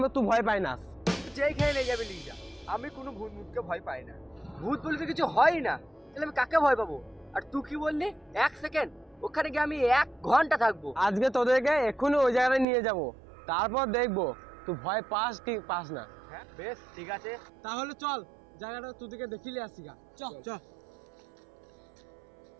তুই ভয় পাই না। যেইখানে নিয়ে যাবে নিয়ে যা, আমি কোনো ভূত মুতকে ভয় পাই না। ভূত বলে তো কিছু হয় না, তাহলে আমি কাকে ভয় পাবো? আর তুই কি বললি 1 সেকেন্ড? ওখানে গিয়ে আমি 1 ঘন্টা থাকবো। আজকে তোদেরকে এক্ষুনি ওই জায়গায় নিয়ে যাব, তারপর দেখবো তুই ভয় পাস কি পাস না। হ্যাঁ বেশ ঠিক আছে। তাহলে চল জায়গাটা তোদেরকে দেখিলে আসি গা। চল চল।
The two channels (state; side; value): drops out; left; at 12.7 s